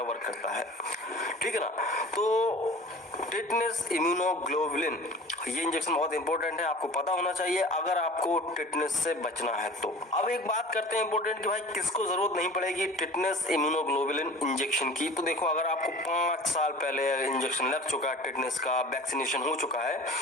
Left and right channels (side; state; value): both; normal; correlation 0.41